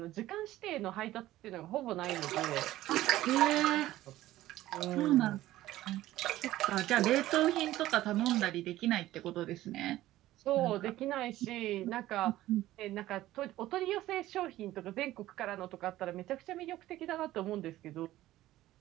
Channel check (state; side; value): quieter; left; 15.3 dB